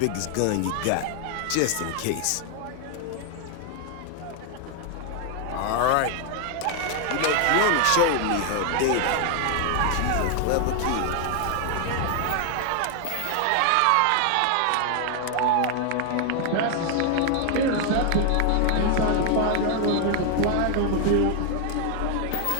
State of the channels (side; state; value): both; different; correlation 0.00